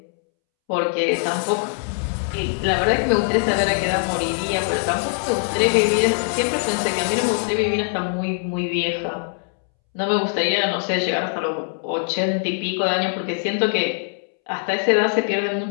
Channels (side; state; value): right; silent; 64 dB below the other